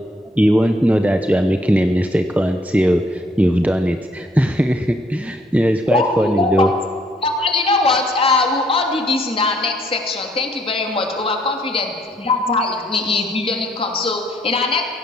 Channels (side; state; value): both; normal; correlation 0.68